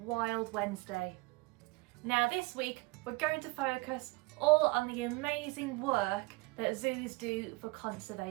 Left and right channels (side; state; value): left; quieter; 25.2 dB